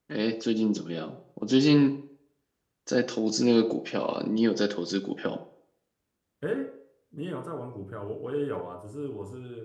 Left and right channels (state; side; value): identical; both; correlation 1.00